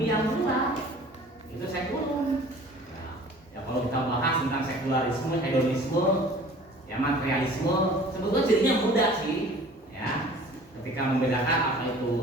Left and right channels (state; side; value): normal; both; correlation 0.47